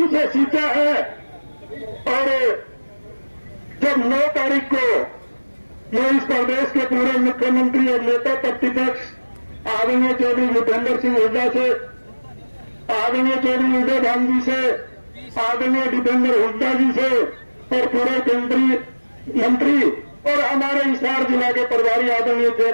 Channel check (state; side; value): inverted; both; correlation -1.00